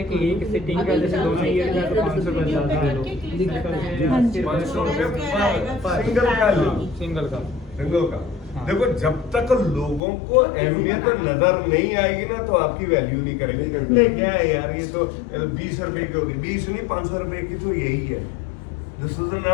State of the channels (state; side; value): drops out; right; at 10.0 s